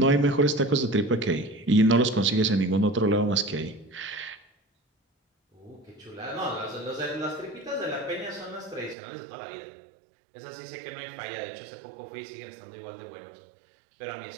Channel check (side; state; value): left; drops out; at 9.0 s